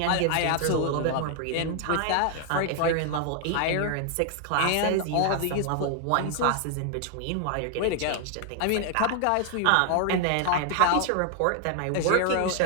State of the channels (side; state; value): both; different; correlation 0.00